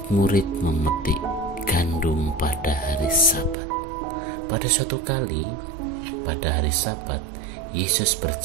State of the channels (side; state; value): left; drops out; at 3.6 s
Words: memetik gandum pada hari Sabat. Pada suatu kali, pada hari Sabat, Yesus